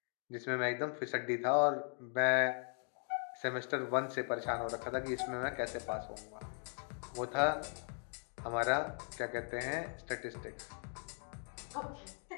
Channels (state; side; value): silent; right; 52 dB below the other